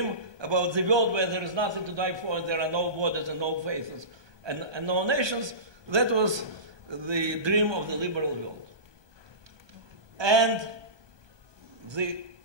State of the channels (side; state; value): left; late; 1.2 ms